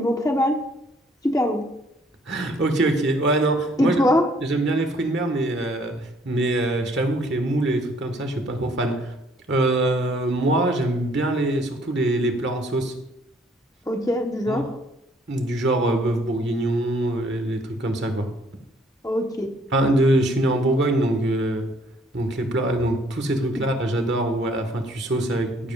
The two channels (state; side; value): normal; both; correlation 0.62